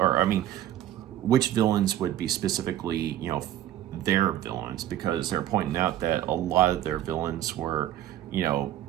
which villains would be specifically, their villains. Because they're pointing out that a lot of their villains were,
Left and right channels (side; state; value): left; quieter; 12.5 dB